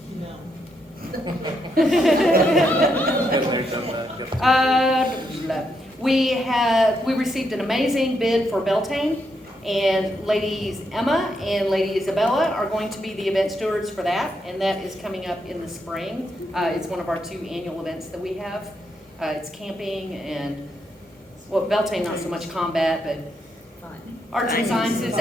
We received an amazing bid for Beltane, and ladies Emma and lady Isabella are going to be the event stewards for that, and that is coming up in the spring. It's one of our 2 annual events that we have. It's camping and, well, Beltane not so much combat, but arts and sciences,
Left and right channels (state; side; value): normal; both; correlation 0.79